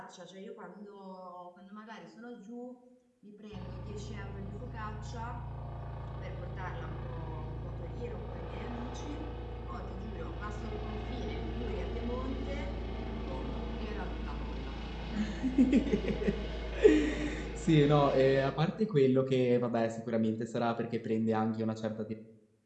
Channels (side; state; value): both; identical; correlation 1.00